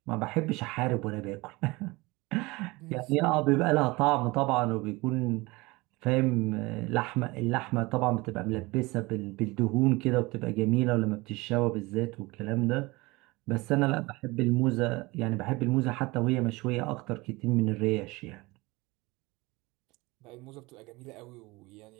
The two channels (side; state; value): left; quieter; 22.9 dB